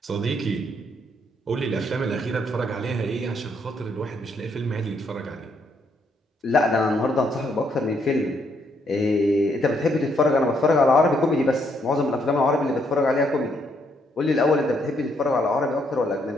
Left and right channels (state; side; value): normal; both; correlation 0.73